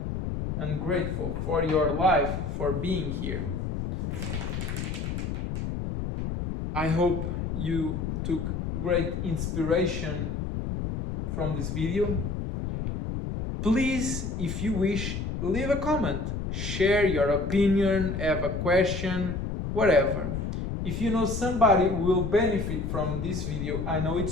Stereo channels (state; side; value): noise; left; rumble, 3 dB below the sound